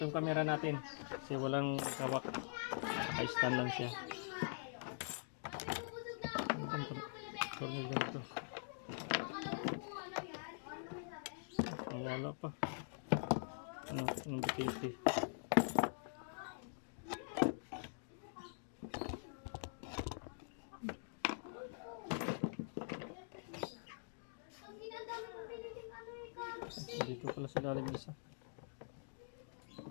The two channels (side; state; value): right; silent; digital silence